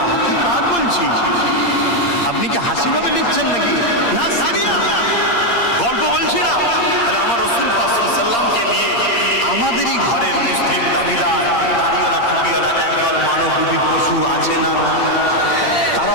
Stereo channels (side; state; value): right; late; 8.6 ms